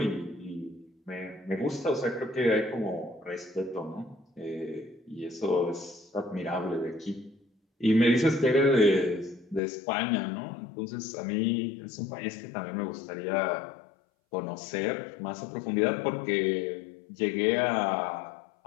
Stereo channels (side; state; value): right; drops out; at 9.6 s